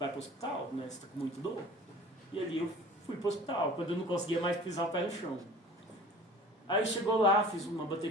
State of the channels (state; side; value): normal; both; correlation 0.45